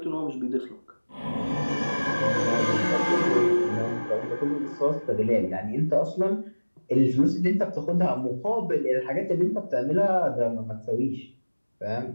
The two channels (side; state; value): both; inverted; correlation -1.00